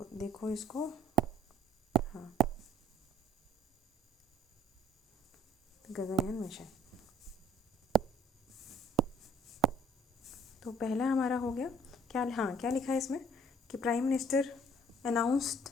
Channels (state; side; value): normal; both; correlation 0.60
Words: देखो इसको, हाँ, गगनयान मिशन। तो पहला हमारा हो गया क्या, हाँ, क्या लिखा है इसमें कि prime minister